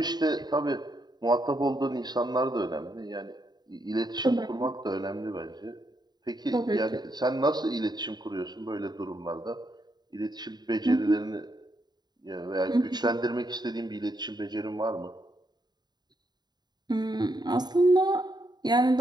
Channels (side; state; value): left; late; 0.20 ms